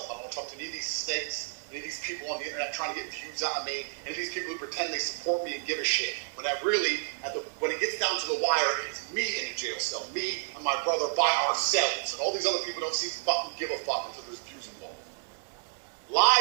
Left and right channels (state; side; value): silent; left; 57 dB below the other